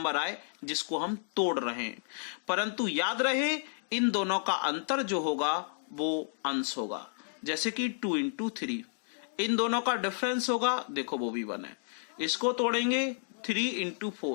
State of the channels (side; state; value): right; silent; digital silence